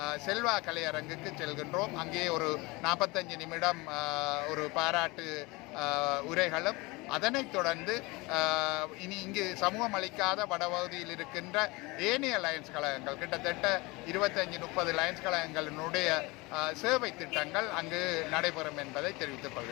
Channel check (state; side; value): quieter; right; 24.2 dB